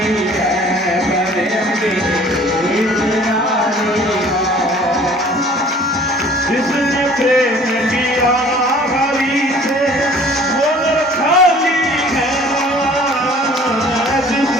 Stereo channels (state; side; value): normal; both; correlation 0.51